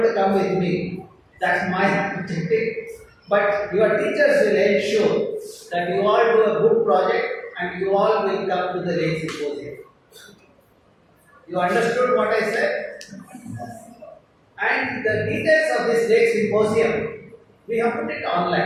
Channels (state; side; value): identical; both; correlation 1.00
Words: to come with me. That's my objective. But your teachers will ensure that you all do a good project and you all will come to the Lake Symposium. You understood what I said? And the details of this Lake Symposium, we have put it